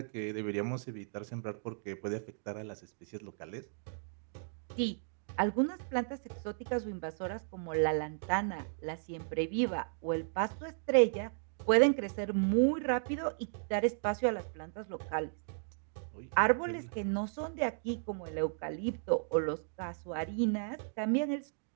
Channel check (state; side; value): silent; left; digital silence